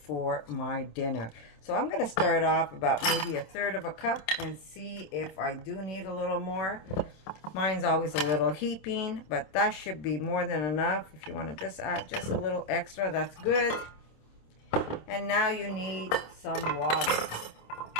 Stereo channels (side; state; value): right; late; 26 ms